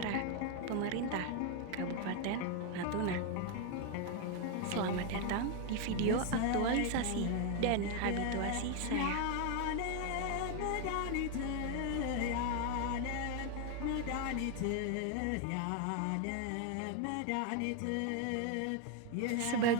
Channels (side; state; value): both; different; correlation 0.01